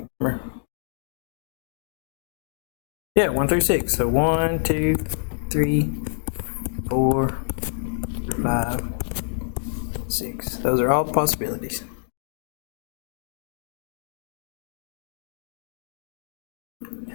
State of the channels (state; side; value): silent; right; digital silence